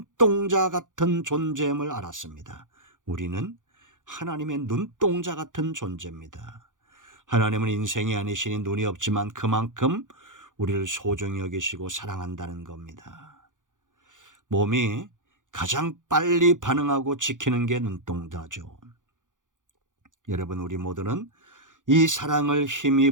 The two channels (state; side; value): late; left; 0.87 ms